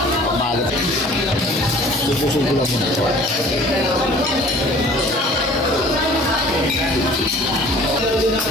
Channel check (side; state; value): both; normal; correlation 0.49